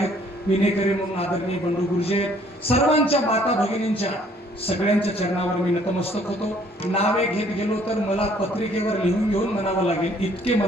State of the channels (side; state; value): both; normal; correlation 0.61